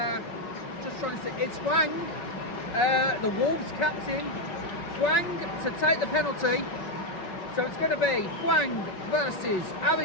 just trying to see, it's Hwang, the Wolves captain, Hwang to take the penalty. So it's going to be Hwang versus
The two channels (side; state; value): right; late; 5.4 ms